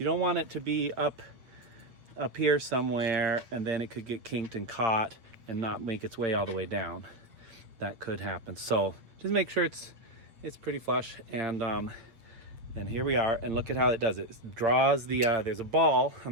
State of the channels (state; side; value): late; left; 8.1 ms